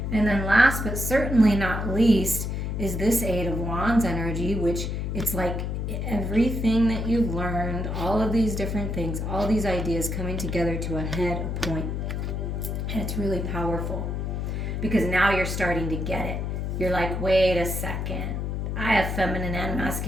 And then last but certainly not least is this 8 of Wands energy, which it's like everything that you've learned, all of these different things, all these ideas coming together to a head, a point. And it's really powerful because now you're starting to get it. You're like, wait a second. I have feminine and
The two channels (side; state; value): left; noise; hum, 2 dB below the sound